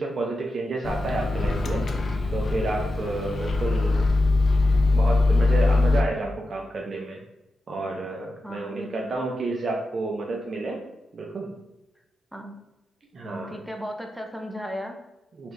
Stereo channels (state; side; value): normal; both; correlation 0.91